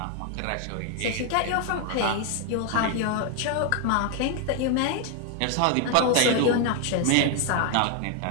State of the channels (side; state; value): both; different; correlation 0.00